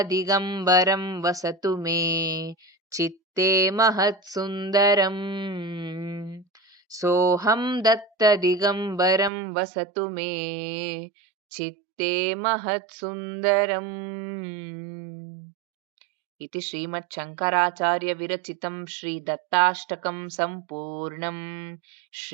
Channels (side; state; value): left; drops out; at 9.3 s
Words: वसतु मे चित्ते महत्सुन्दरम्। सोऽहं दत्तदिगम्बरं वसतु मे चित्ते महत्सुन्दरम्। इति श्रीमच्छङ्कराचार्यविरचितं श्रीदत्ताष्टकं सम्पूर्णम्।